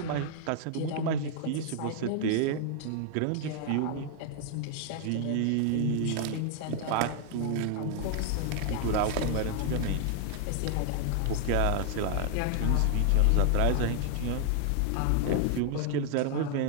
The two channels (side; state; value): both; different; correlation 0.00